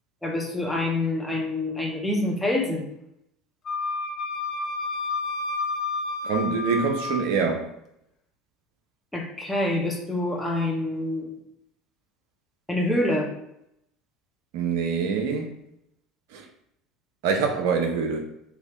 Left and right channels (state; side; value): normal; both; correlation 0.32